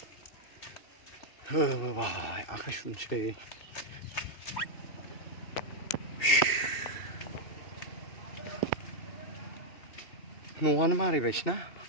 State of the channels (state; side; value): late; right; 2.6 ms